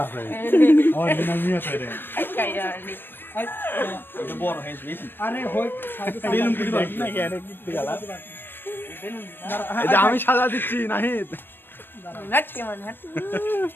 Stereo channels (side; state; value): right; late; 0.097 ms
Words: আছে আমার বিনা মিয়া রে এটা বড় হয়ে বেশি আরে হই বেলুন কুড়ি বাকি না কি আরে কি গালা এটা আমি সাজা দিচ্ছি নাহিদ নাট কেমন হাট